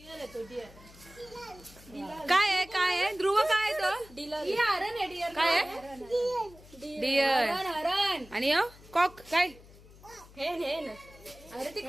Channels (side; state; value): left; noise; hum, 22 dB below the sound